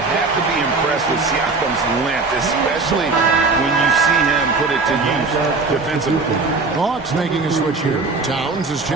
have to be impressed with Siakam's length, especially when you see him put it to use defensively. Hawks making a switch here. Towns is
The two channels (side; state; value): left; quieter; 3.9 dB